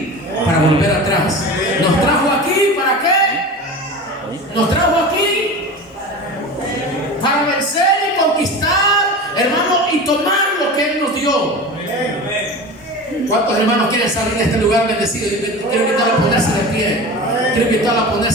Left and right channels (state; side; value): normal; both; correlation 0.31